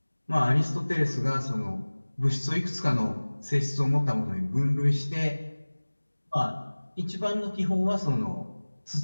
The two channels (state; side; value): inverted; both; correlation -1.00